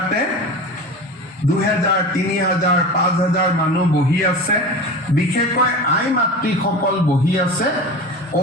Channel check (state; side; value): normal; both; correlation 0.31